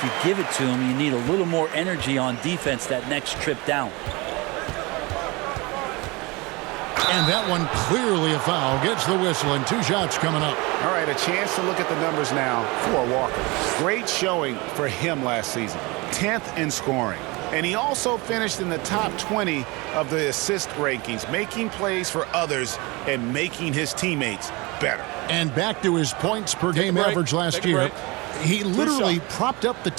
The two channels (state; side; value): quieter; left; 25.1 dB